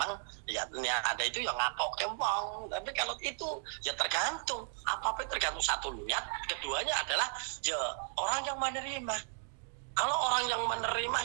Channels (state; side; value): silent; left; 54 dB below the other